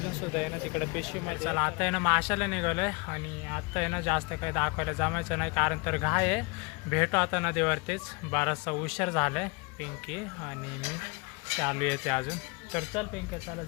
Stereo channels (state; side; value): quieter; right; 28.4 dB